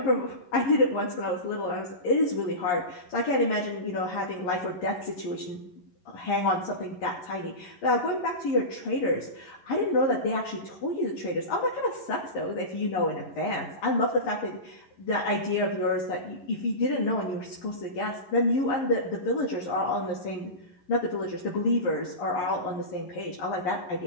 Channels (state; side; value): late; right; 11 ms